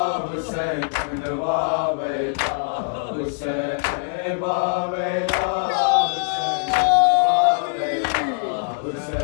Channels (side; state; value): right; silent; digital silence